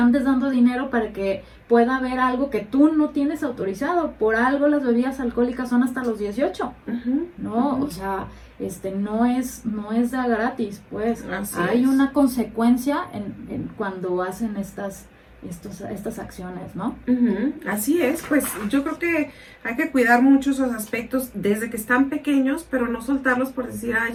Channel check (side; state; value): both; identical; correlation 1.00